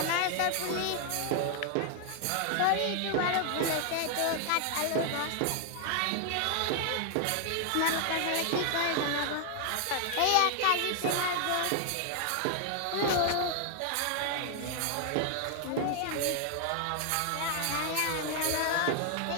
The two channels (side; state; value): both; different; correlation 0.00